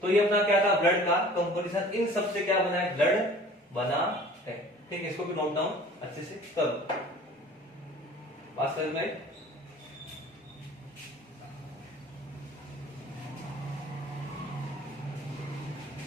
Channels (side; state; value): both; normal; correlation 0.47